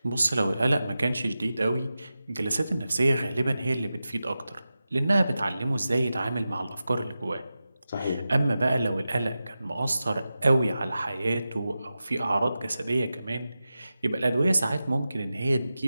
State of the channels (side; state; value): both; inverted; correlation -0.93